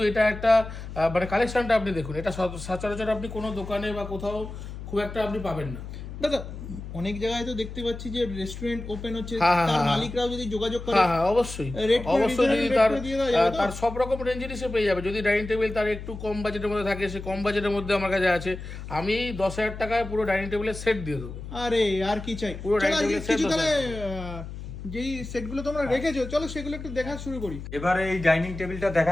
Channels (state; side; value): noise; left; hum, 10 dB below the sound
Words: এটা একটা মানে কালেকশনটা আপনি দেখুন, এটা সচরাচর আপনি কোনো দোকানে বা কোথাও খুব একটা আপনি পাবেন না। দাদা অনেক জায়গায় তো দেখতে পাচ্ছি যে রেস্টুরেন্ট ওপেন হচ্ছে, হ্যাঁ, তার হ্যাঁ, মালিকরাও যদি যোগাযোগ করে, হ্যাঁ অবশ্যই Rate করে অবশ্যই, যদি reasonable তার rate করে দিয়ে দেওয়া যাবে তো? তার সব রকম রেঞ্জেরই সে পেয়ে যাবে। যদি ডাইনিং টেবিল তার একটু কম বাজেটের মধ্যে থাকে, সে কম বাজেটের মধ্যে আমার কাছে আছে। আমি 10,000 টাকায় পুরো ডাইনিং টেবিলের সেট দিয়ে দেবো। আরে আর কি চাই। পুরো চলো আজকে dining table কিছু set তাহলে যেই সেটগুলো তোমরা রেখেছো, চলো সেগুলো একটু দেখা শুরু করি। এবারে এই ডাইনিং টেবিলটা